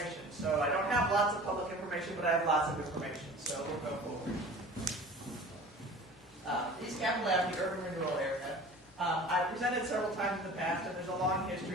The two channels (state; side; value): normal; both; correlation 0.42